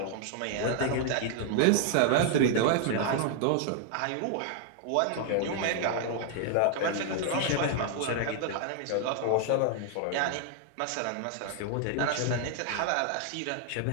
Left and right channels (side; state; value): both; different; correlation 0.00